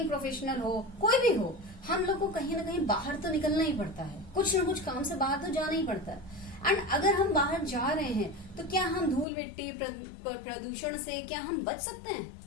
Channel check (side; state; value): right; drops out; at 9.2 s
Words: प्रोफेशनल हो, कोई भी हो, हम लोग को कहीं ना कहीं बाहर तो निकलना ही पड़ता है, कुछ ना कुछ काम से बाहर तो जाना ही पड़ता है। एंड अगर हम बाहर जा रहे हैं तो क्या हम धूल मिट्टी प्रदूषण से क्या हम बच सकते हैं?